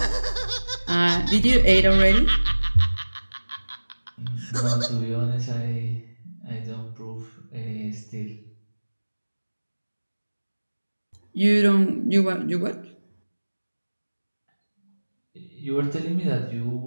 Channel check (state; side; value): inverted; both; correlation -1.00